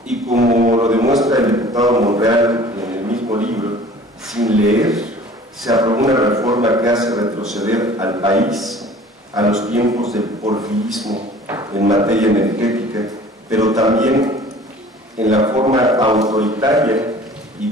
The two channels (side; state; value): both; normal; correlation 0.47